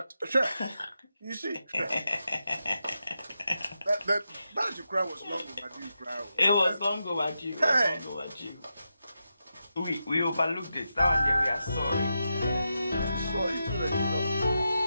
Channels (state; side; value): inverted; both; correlation -0.87